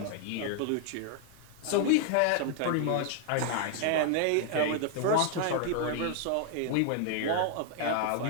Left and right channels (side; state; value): both; different; correlation 0.00